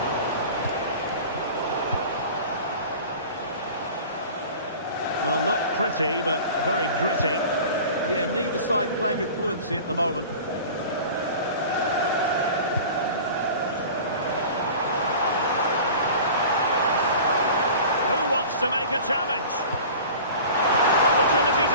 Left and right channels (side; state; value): both; inverted; correlation -0.39